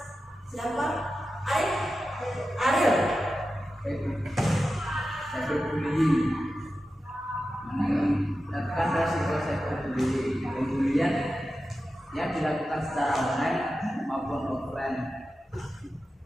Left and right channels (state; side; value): normal; both; correlation 0.92